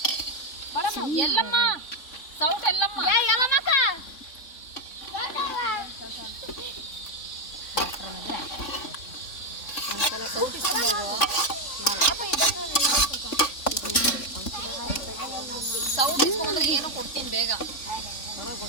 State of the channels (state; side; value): late; right; 3.6 ms